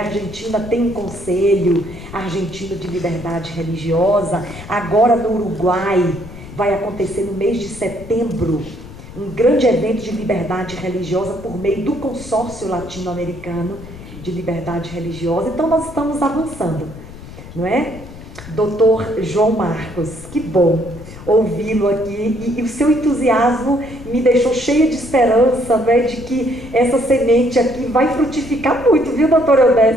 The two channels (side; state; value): left; noise; rumble, 15 dB below the sound